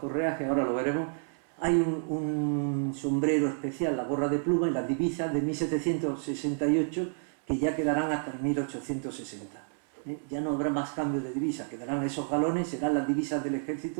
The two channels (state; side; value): silent; left; 58 dB below the other